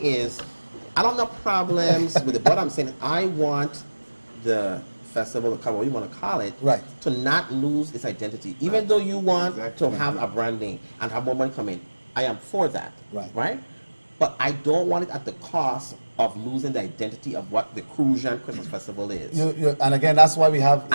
is, I don't have problems with it. What I'm saying, I want the festival, the carnival, you want to call it, Right. to not lose its identity. Even though you want to have a branding and have more money come in, I am for that. Right. But I don't want it at the cost of losing the identity of what the Crucian Christmas Festival is. And again, that's why we have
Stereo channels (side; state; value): both; inverted; correlation -1.00